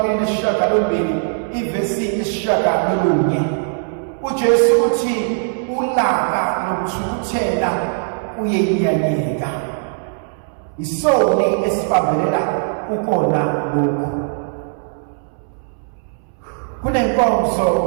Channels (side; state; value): left; silent; 66 dB below the other